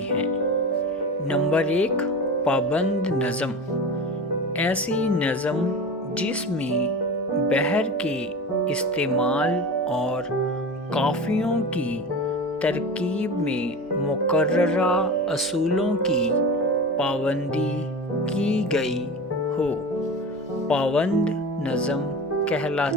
ہیں۔ نمبر 1، پابند نظم۔ ایسی نظم جس میں بحر کے استعمال اور قافیوں کی ترکیب میں مقررہ اصولوں کی پابندی کی گئی ہو، پابند نظم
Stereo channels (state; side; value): normal; both; correlation 0.30